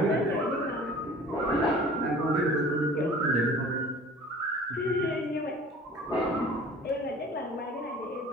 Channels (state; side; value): normal; both; correlation 0.46